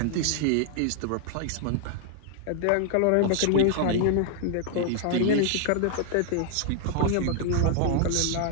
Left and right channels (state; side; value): different; both; correlation 0.00